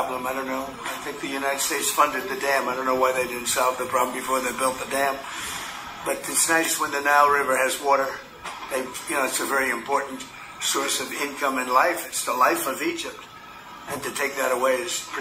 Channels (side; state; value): both; identical; correlation 1.00